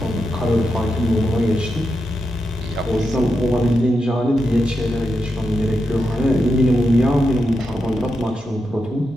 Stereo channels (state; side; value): normal; both; correlation 0.87